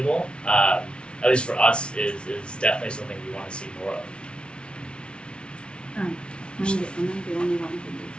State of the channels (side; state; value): right; late; 0.057 ms